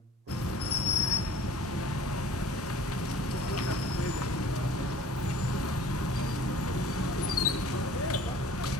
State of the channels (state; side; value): normal; both; correlation 0.46